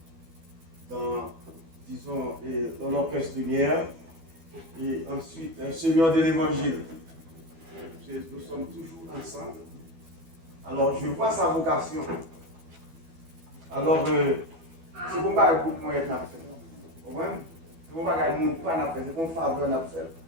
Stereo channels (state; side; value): late; left; 12 ms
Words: dans l'orchestre lumière et ensuite un seigneur de l'évangile. Nous sommes toujours ensemble. Alors, je vois sa vocation. Alors, c'est pour pas que moi être fait. Vous comprenez? C'est pour pas que mon pas n'a fait, c'est pour faveur n'a fait.